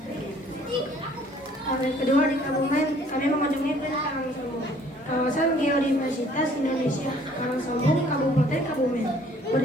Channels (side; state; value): both; normal; correlation 0.57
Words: Hari kedua di Kebumen, kami mengunjungi Karangsombong, kawasan geodiversitas Indonesia, Karangsombong, Kabupaten Kebumen,